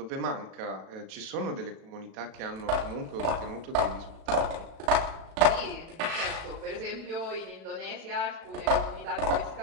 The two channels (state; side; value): late; left; 36 ms